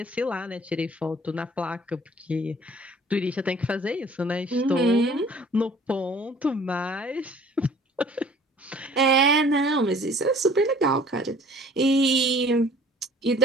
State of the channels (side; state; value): both; normal; correlation 0.52